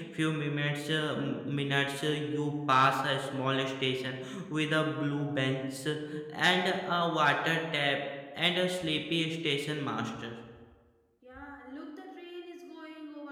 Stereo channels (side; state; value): both; identical; correlation 1.00